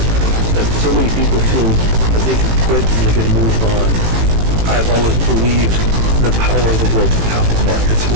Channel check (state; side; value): late; left; 18 ms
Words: That so many people feel that they can quit and they can move on. I've always believed the power of the global capital markets, and